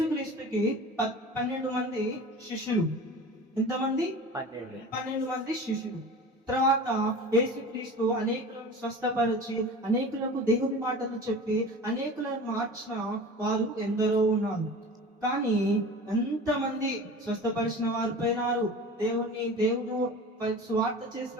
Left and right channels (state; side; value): normal; both; correlation 0.36